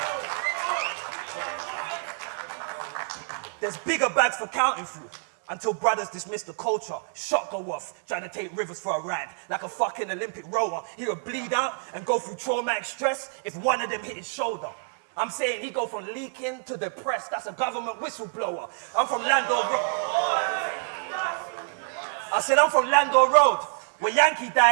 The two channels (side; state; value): left; silent; digital silence